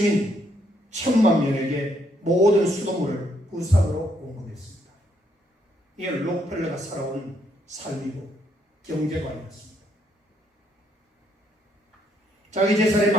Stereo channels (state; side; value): normal; both; correlation 0.73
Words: 1,000만 명에게 모든 수돗물을 무상으로 공급했습니다. 이게 록펠러가 살아온 삶이고 경제관이었습니다. 자기 재산의